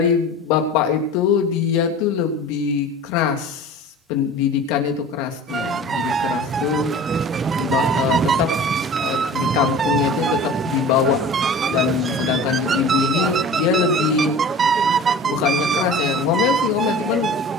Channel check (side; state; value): both; normal; correlation 0.39